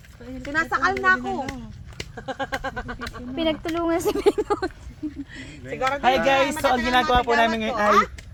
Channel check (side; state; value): both; identical; correlation 1.00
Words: Sinasakal na ako. Pinagtulungan si Benot. Hi guys! So ang ginagawa po namin ngayon ay